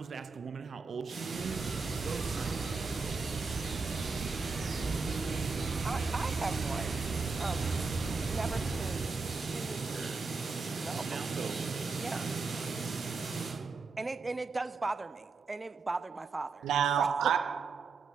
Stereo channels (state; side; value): quieter; left; 4.6 dB